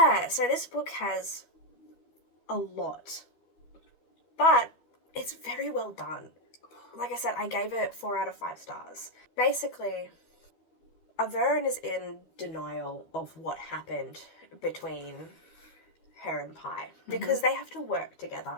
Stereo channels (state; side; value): late; right; 13 ms